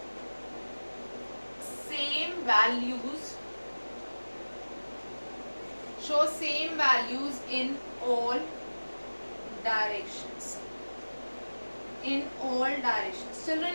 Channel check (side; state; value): both; inverted; correlation -1.00